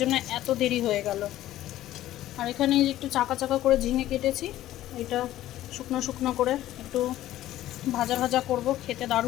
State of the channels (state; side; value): quieter; right; 14.1 dB